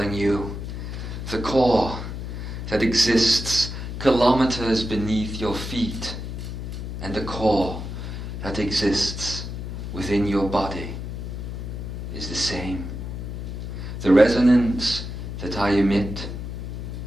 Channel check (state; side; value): noise; left; hum, 6 dB below the sound